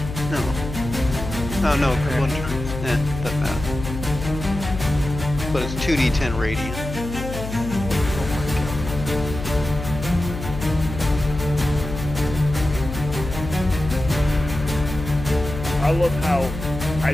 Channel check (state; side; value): noise; left; hum, 7 dB below the sound